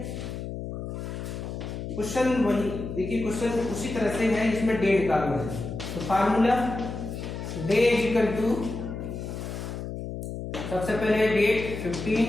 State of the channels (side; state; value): left; noise; hum, 7 dB below the sound